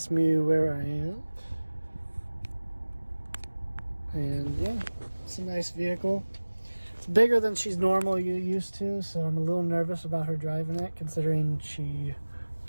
me where I am. And yeah, it's a nice vehicle. It's bigger than she's normally used to, so I'm a little nervous about her driving it, considering she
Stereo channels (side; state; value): both; inverted; correlation -1.00